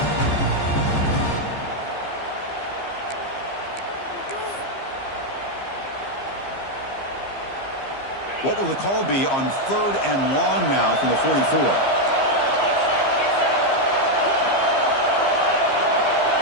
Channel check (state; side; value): late; right; 15 ms